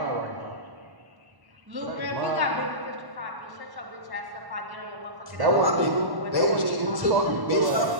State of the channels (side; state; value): left; late; 1.1 ms